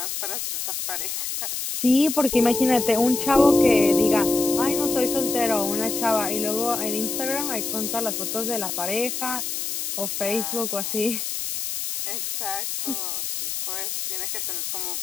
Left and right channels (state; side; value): noise; left; hiss, 4 dB below the sound